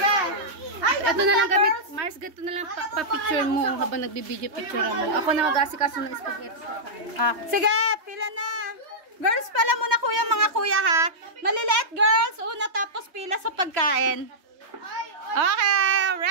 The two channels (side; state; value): left; late; 3.2 ms